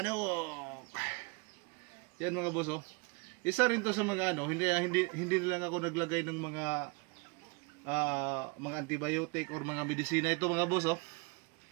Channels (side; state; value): left; quieter; 29.4 dB